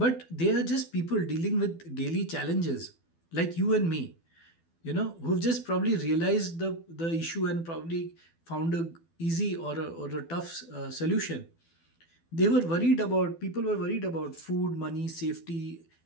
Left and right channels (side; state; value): right; late; 12 ms